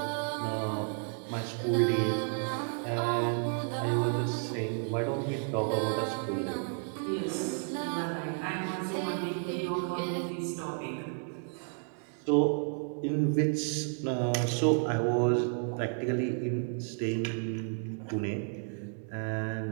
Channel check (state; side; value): silent; left; 56 dB below the other